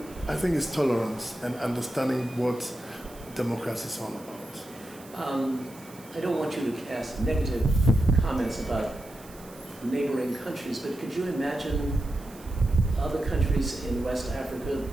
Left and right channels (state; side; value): noise; right; hiss, 21 dB below the sound